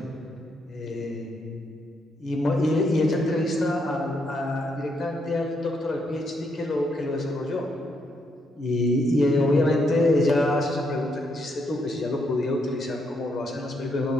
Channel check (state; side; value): normal; both; correlation 0.77